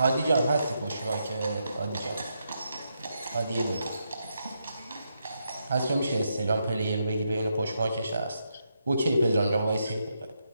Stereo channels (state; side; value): inverted; both; correlation -0.81